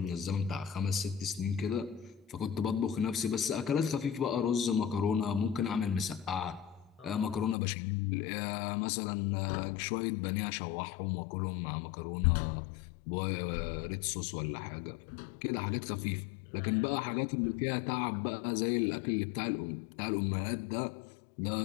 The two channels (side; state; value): right; drops out; at 7.6 s